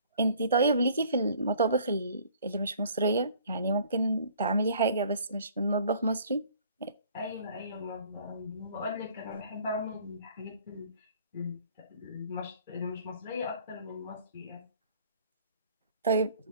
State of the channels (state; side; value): inverted; both; correlation -0.54